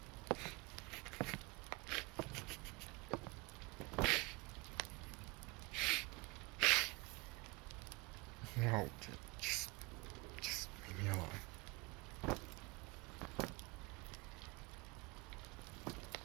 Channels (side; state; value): left; quieter; 25.7 dB